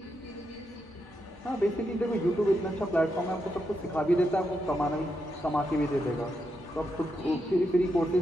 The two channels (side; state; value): both; normal; correlation 0.83